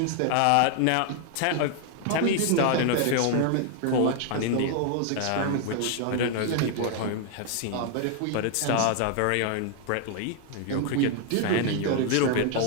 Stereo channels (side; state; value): both; different; correlation 0.00